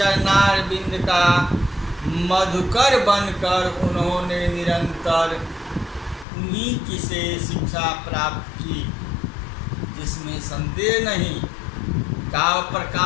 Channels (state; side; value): drops out; right; at 6.2 s